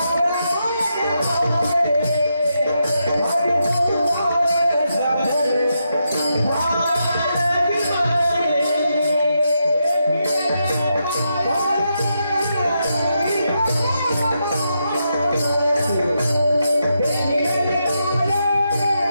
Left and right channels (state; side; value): inverted; both; correlation -0.83